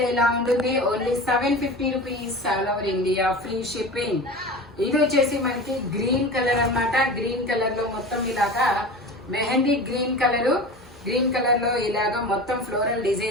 ఇలా ఉంటుంది. Only 750 rupees all over India, free shipping. ఇది వచ్చేసి మనకి గ్రీన్ కలర్ అన్నమాట. గ్రీన్ కలర్ లో మొత్తం ఇలాగా mehndi green colour. Green colour లో ఇలాగా మొత్తం ఫ్లోరల్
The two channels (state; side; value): normal; both; correlation 0.33